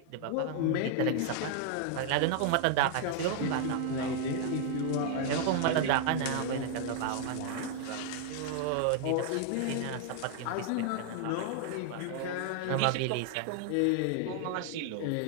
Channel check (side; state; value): both; different; correlation 0.00